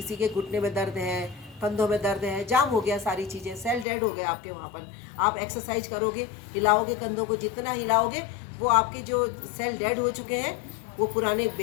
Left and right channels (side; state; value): right; drops out; at 3.9 s